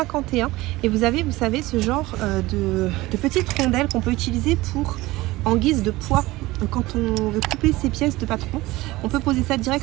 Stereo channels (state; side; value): quieter; left; 19.3 dB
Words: et vous avez, vous savez, ce genre de petites rondelles qu'on peut utiliser en guise de poids. Quand on veut couper ces pièces de patron, on peut poser ça